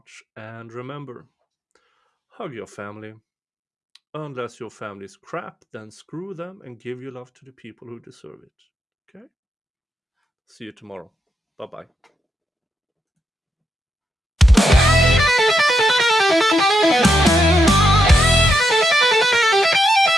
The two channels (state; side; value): normal; both; correlation 0.82